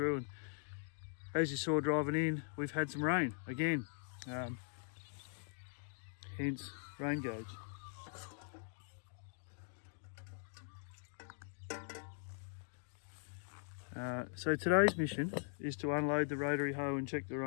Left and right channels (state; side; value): silent; right; digital silence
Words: As you saw driving in, we've had some rain again, hence rain gauge. So today's mission is to unload the rotary hoe and check the